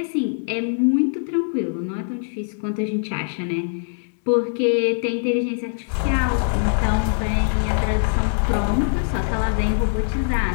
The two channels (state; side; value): silent; right; digital silence